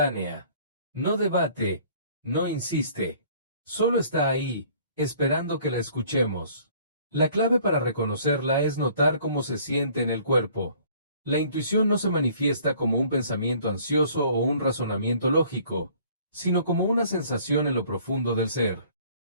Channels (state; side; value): inverted; both; correlation -0.55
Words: No debate, no insiste. Solo está ahí, esperando que la escuchemos. La clave para reconocerla es notar cómo se siente en el cuerpo. La intuición no se manifiesta como un pensamiento ansioso o un razonamiento lógico, sino como una sensación en lo profundo del ser.